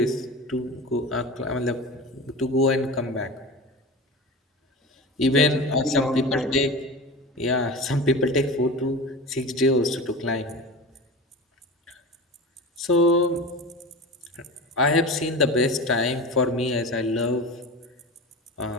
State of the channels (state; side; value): normal; both; correlation 0.30